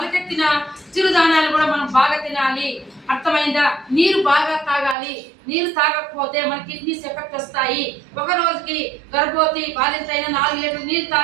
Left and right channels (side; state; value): left; drops out; at 5.0 s